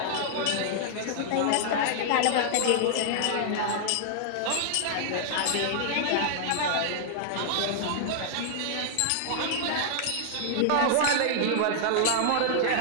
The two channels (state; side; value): different; both; correlation -0.01